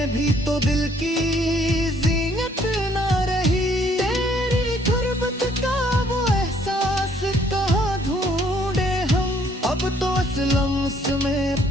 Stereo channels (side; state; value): both; normal; correlation 0.64